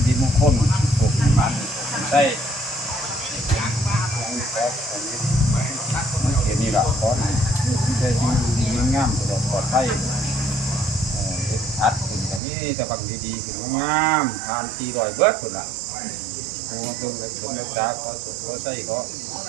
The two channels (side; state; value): left; drops out; at 12.4 s